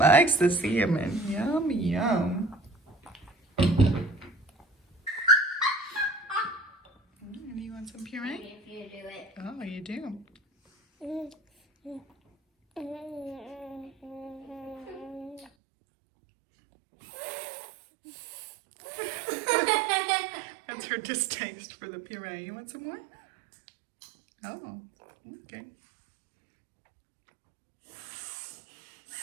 the salmon. Yum, yum. Do you want some puree? If you do it. Oh, you do. That's her distaste for the puree. You want some more? Oh, okay.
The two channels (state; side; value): drops out; left; at 15.5 s